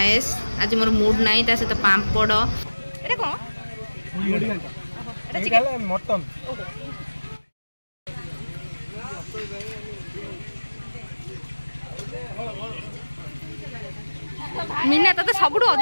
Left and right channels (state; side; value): inverted; both; correlation -1.00